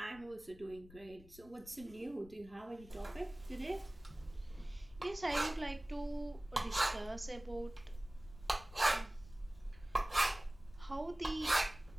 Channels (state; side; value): noise; left; rumble, 19 dB below the sound